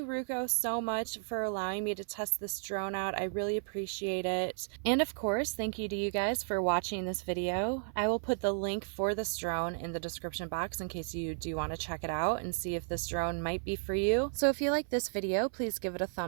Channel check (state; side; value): silent; left; 55 dB below the other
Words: Ruko, so much for allowing me to test this drone out. I really appreciate it. And of course, thank you to you guys for watching this video. I will put the link for this drone in the description box in case you do want to check it out and see if this drone might be for you. So if you like this video, please give it a